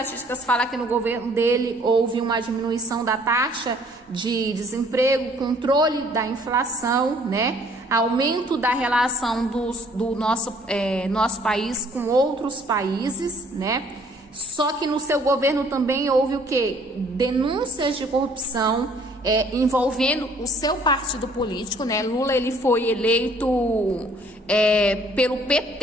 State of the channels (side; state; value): both; normal; correlation 0.60